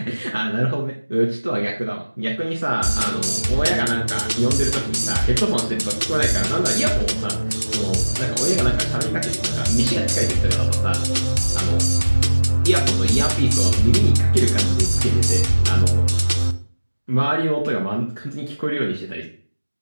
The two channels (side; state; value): both; inverted; correlation -1.00